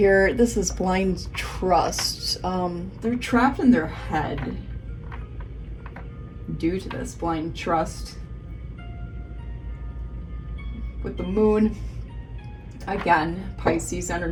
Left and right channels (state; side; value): identical; both; correlation 1.00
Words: this is blind trust. They're trapped in their head due to this blind trust. With the moon, again, Pisces